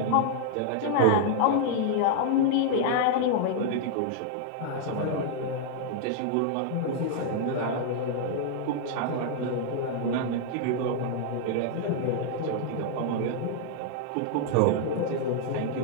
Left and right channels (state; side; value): different; both; correlation -0.01